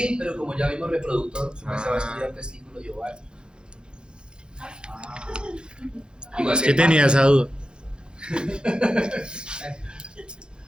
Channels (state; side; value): late; left; 0.049 ms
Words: pero como ya vimos reproductor, se va a estudiar testículo y ovario. Igual Es que tenía esa duda.